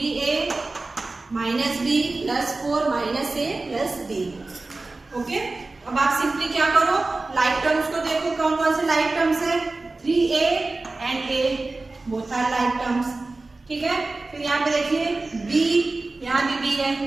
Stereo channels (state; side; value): quieter; left; 3.3 dB